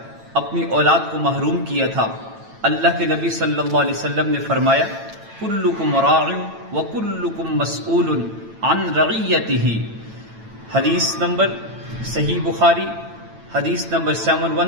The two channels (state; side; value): late; left; 9.0 ms